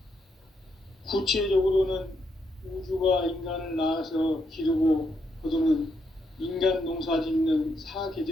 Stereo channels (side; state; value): both; normal; correlation 0.79